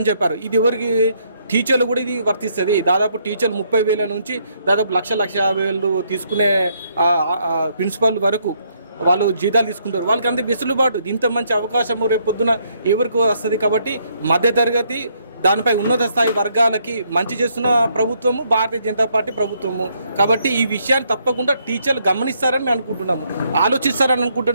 చెప్పారు. ఇది ఎవరికి? టీచర్లు కూడా ఇది వర్తిస్తుంది. దాదాపు టీచర్లు 30,000 నుంచి దాదాపు 1,50,000 తీసుకునే ప్రిన్సిపల్ వరకు వాళ్ళు జీతాలు తీసుకుంటారు. వాళ్ళకి అంత వెసులుబాటు, ఇంత మంచి అవకాశం రేపు పొద్దున ఎవరికి వస్తుంది? కాబట్టి మధ్యతరగతి దానిపై ఉన్నత స్థాయి వర్గాలకి మంచి చేస్తున్న ప్రభుత్వము భారతీయ జనతా పార్టీ ప్రభుత్వము. కాబట్టి ఈ విషయాన్ని తప్పకుండా టీచర్లు గమనిస్తారని మేము అనుకుంటున్నాము, ఆలోచిస్తారని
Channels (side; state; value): both; inverted; correlation -0.71